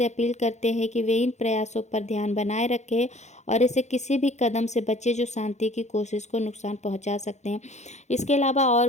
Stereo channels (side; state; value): right; late; 0.33 ms